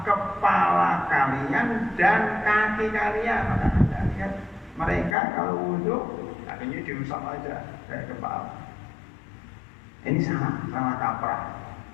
kepala kalian dan kaki kalian. Maka Anda lihat mereka kalau wudhu kakinya diusap aja kayak kepala. Ini salah kaprah.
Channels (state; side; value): drops out; right; at 5.2 s